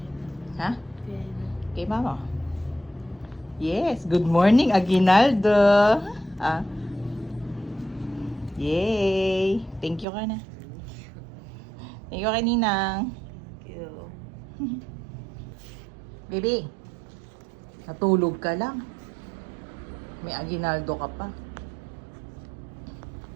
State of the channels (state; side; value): drops out; left; at 10.1 s